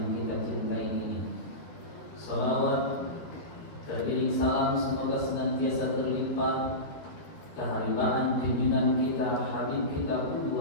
kita cintai ini. Salawat teriring salam semoga senantiasa terlimpah keharibaan junjungan kita, habib kita,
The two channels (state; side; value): late; right; 12 ms